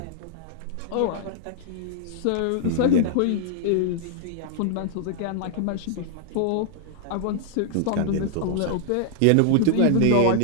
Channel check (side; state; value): both; different; correlation -0.01